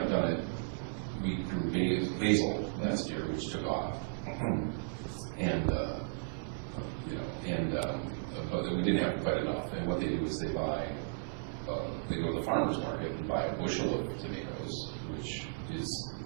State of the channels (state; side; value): silent; left; digital silence